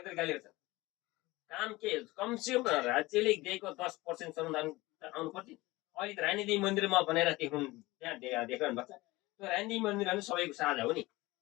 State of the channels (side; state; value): right; quieter; 20.4 dB